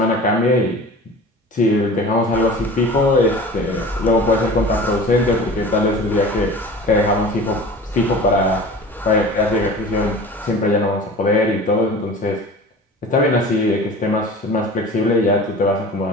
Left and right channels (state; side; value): normal; both; correlation 0.39